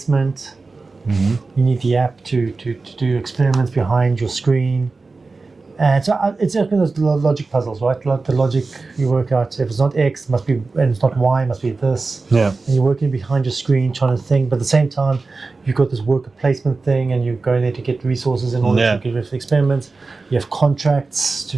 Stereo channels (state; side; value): quieter; left; 3.9 dB